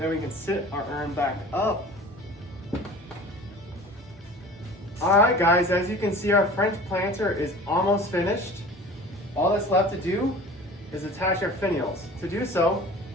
we can sit our urn back up. All right, guys, as you can see, our French planter is almost finished. All that's left to do is attach our finials. To do so,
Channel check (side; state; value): both; normal; correlation 0.41